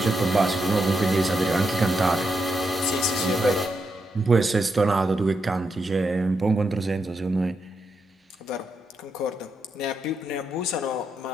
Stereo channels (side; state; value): both; normal; correlation 0.83